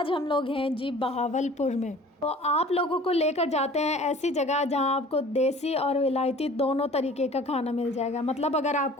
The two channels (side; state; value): both; normal; correlation 0.47